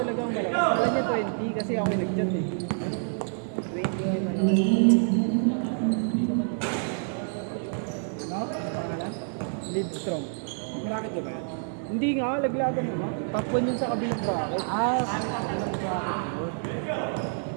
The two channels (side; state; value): left; silent; 60 dB below the other